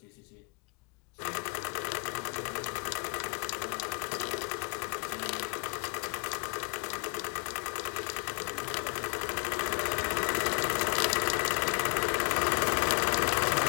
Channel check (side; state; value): right; quieter; 33.6 dB